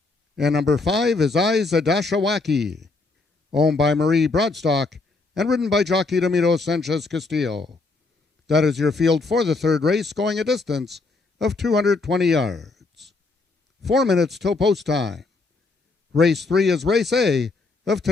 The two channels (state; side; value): quieter; right; 3.7 dB